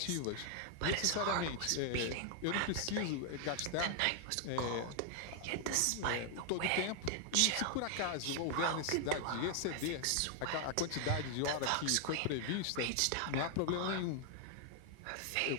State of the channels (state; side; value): different; both; correlation 0.00